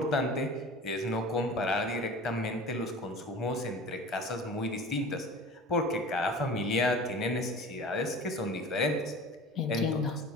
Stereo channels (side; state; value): both; normal; correlation 0.39